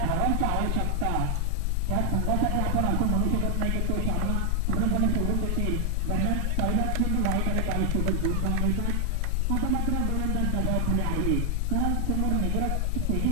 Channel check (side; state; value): both; different; correlation 0.00